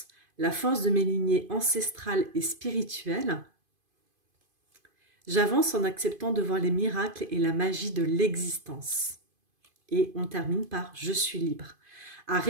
la force de mes lignées ancestrales et spirituelles. J'avance en acceptant de voir les miracles et la magie de l'existence. Et on termine par « Je suis libre ». À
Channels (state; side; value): late; left; 2.5 ms